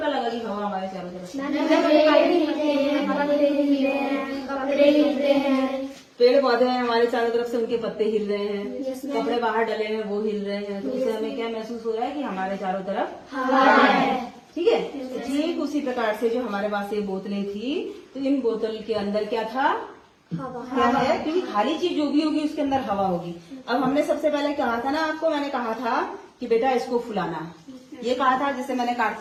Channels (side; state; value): both; identical; correlation 1.00